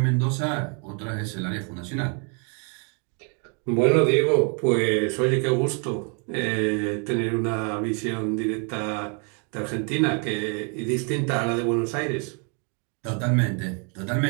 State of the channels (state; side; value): quieter; left; 38.1 dB